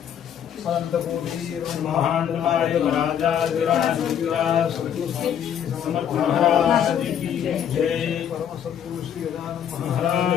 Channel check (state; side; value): quieter; right; 9.1 dB